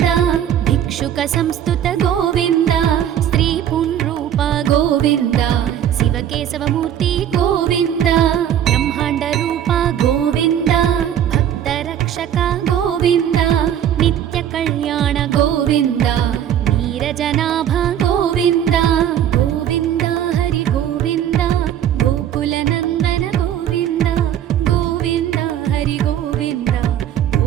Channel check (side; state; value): left; quieter; 10.2 dB